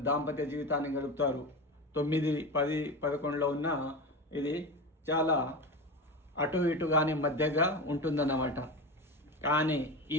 దాంపత్య జీవితాన్ని గడుపుతారు. 9, 10, 11లో ఉన్న ఇది చాలా అటు ఇటు కానీ మధ్యగా ఉంటుందన్నమాట. కానీ ఈ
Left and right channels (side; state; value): both; normal; correlation 0.24